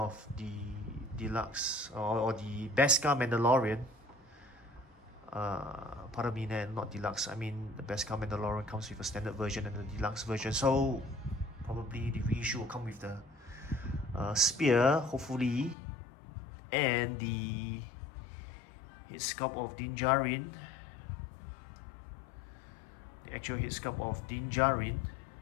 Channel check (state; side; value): drops out; right; at 15.8 s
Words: the deluxe or the Beskar Mandalorian. Pardon me, not deluxe. I mean, the Beskar Mandalorian comes with a standard version and the deluxe version. So probably the reissue will come with the spear, hopefully, and the head sculpt of Djarin. The actual head sculpt of Djarin.